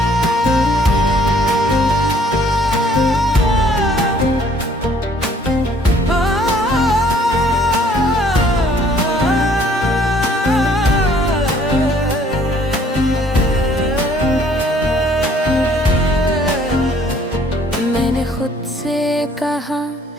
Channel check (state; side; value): normal; both; correlation 0.60